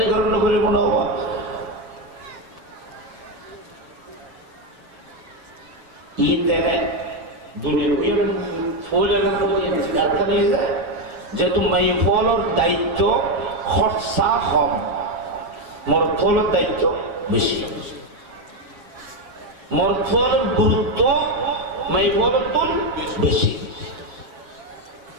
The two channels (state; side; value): late; left; 7.0 ms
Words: গ্রহণ করে মনে হওয়া ঈদ দেনে দুনিয়ার ফুলের কারখানা যায় যেহেতু মাই ফলর দায়িত্ব খরচা কম, মরদ ফলের দায়িত্ব বেশি, মরদ ফলের গুরুত্ব মাই ফলের তুল বেশি।